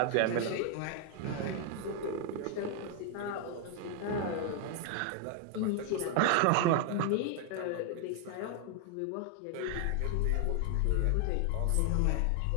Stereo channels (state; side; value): different; both; correlation 0.00